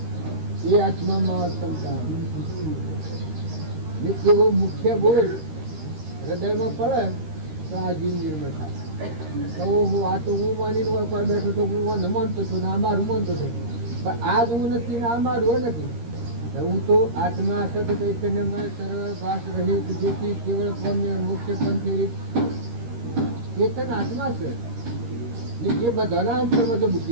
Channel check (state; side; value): late; left; 13 ms